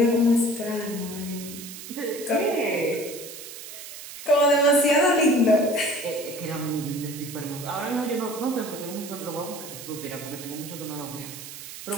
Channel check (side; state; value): right; noise; hiss, 12 dB below the sound